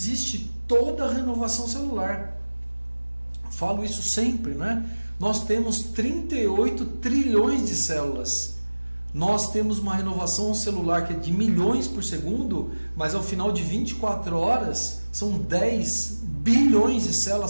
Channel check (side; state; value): both; inverted; correlation -1.00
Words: toda a renovação celular. Falo isso sempre, né? Nós temos 38 trilhões de células. Nós temos uma renovação celular que é de milhões por segundo, mas ao final de 24 horas são 10 bilhões de